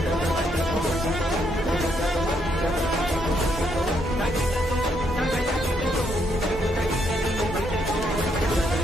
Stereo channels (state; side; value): normal; both; correlation 0.75